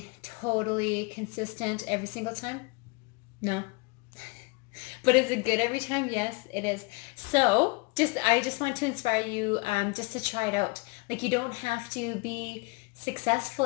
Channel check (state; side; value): quieter; right; 27.4 dB